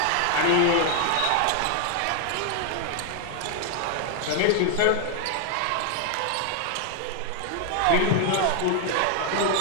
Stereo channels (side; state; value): both; different; correlation 0.00